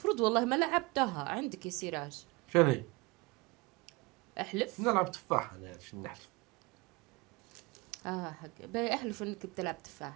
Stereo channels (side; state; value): left; quieter; 25.6 dB